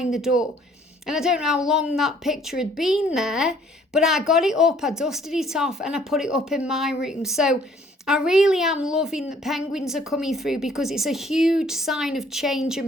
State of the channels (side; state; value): both; normal; correlation 0.60